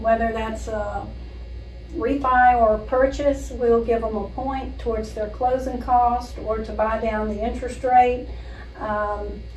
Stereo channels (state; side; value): identical; both; correlation 1.00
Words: that's a refi or a purchase. We'll give them a point towards their closing cost or to buy down the interest rate.